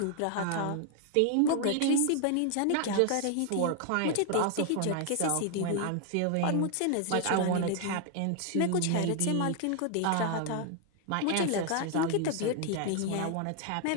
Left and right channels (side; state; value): both; different; correlation 0.00